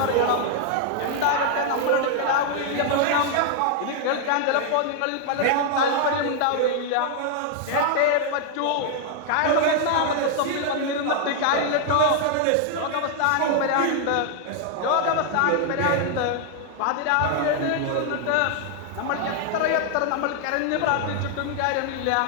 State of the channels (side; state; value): both; different; correlation 0.00